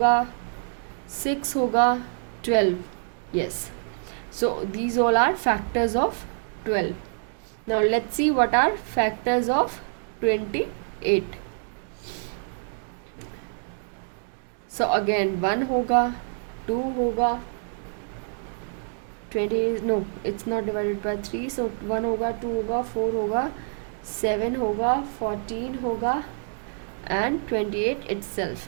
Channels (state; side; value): silent; left; digital silence